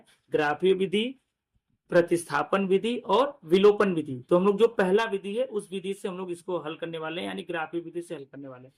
ग्राफीय विधि, प्रतिस्थापन विधि और विलोपन विधि। तो हम लोग जो पहला विधि है उस विधि से हम लोग इसको हल करने वाले हैं, यानी ग्राफीय विधि से हल करने वाले हैं।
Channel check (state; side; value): identical; both; correlation 1.00